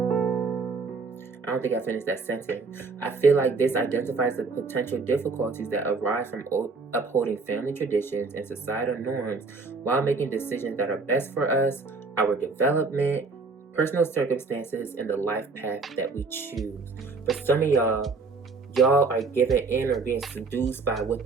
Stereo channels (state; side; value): quieter; left; 4.1 dB